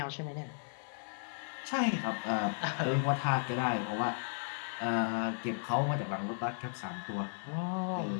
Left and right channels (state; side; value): silent; right; digital silence